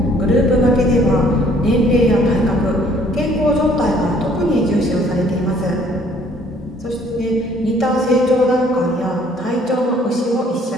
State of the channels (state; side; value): normal; both; correlation 0.60